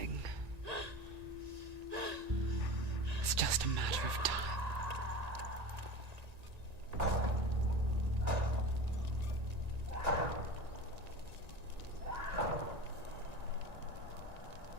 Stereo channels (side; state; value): left; late; 1.9 ms